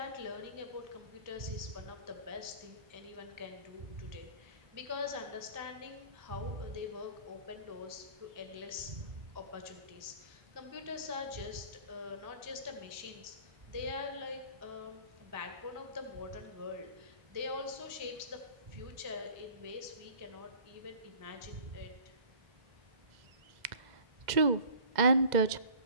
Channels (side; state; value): left; late; 2.0 ms